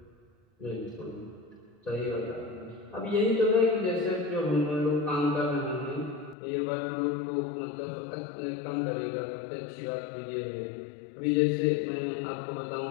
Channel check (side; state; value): right; drops out; at 6.4 s